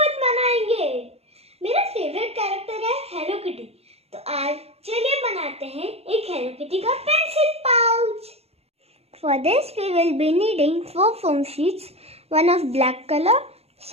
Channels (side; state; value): left; late; 0.30 ms